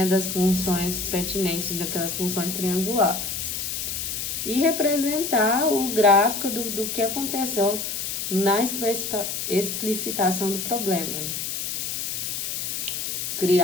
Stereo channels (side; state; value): left; noise; hiss, 3 dB below the sound